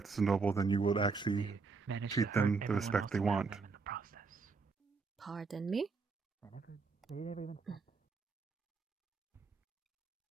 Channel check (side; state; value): left; quieter; 4.6 dB